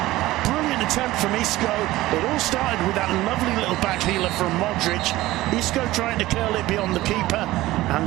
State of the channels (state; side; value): quieter; left; 17.2 dB